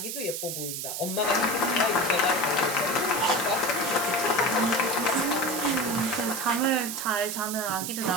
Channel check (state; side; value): noise; right; hiss, 5 dB below the sound